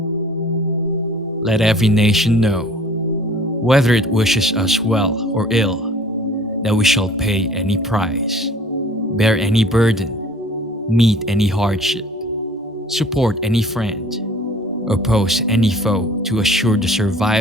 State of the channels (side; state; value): both; normal; correlation 0.50